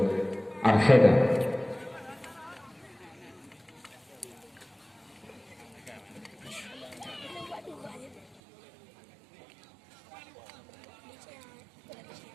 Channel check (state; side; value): drops out; left; at 8.4 s